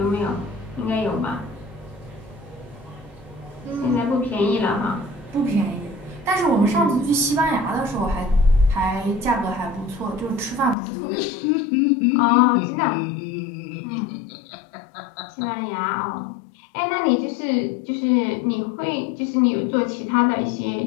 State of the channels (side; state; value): right; drops out; at 10.8 s